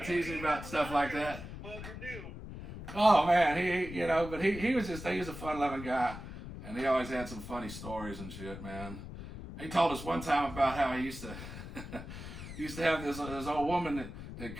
of teased me about stuff like that. Oh man, he was a fun-loving guy, and he always had some funny stories and shit, man. He told us one time about how he used to have this old woman that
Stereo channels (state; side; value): noise; left; rumble, 10 dB below the sound